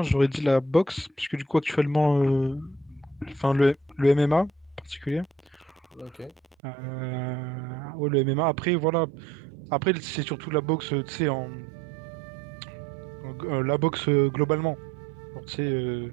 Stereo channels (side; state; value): left; drops out; at 6.6 s